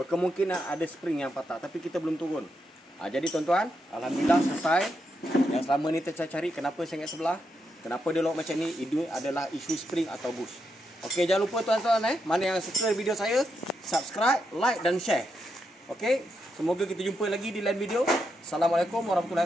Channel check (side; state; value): both; normal; correlation 0.83